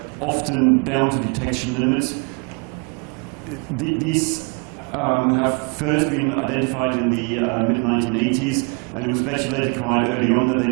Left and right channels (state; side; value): quieter; left; 34.9 dB